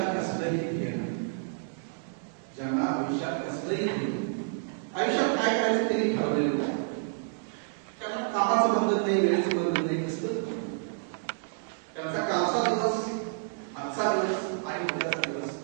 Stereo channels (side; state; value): left; silent; digital silence